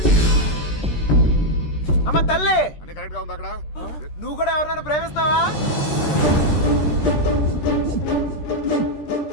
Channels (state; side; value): late; right; 13 ms